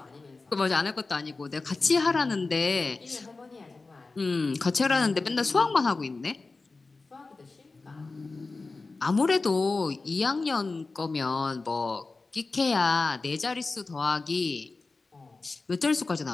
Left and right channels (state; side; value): quieter; right; 3.7 dB